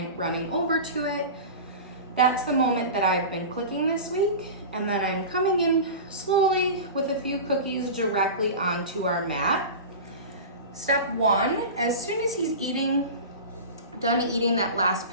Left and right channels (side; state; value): both; inverted; correlation -0.30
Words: over to it, that's the moment that I've been clicking this week. And then I'm coming in slowly with a few cookies directly onto our mat. Step 1, as soon as he's done eating that last